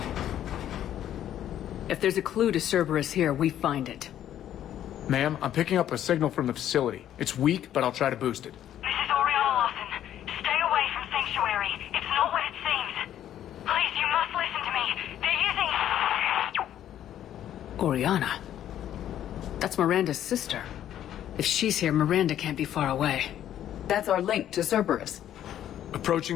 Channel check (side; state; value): right; quieter; 11.2 dB